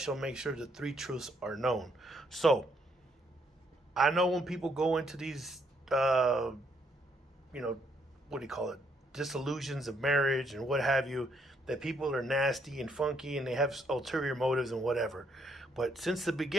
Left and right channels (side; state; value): both; normal; correlation 0.72